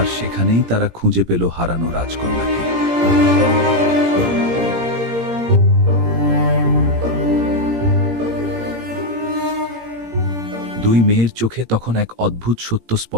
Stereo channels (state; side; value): late; left; 17 ms